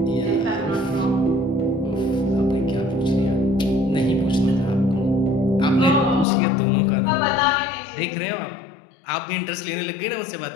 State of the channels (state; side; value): drops out; right; at 6.2 s